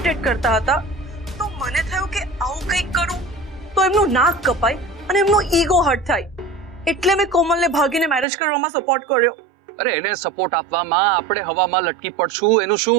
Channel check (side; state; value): left; drops out; at 8.2 s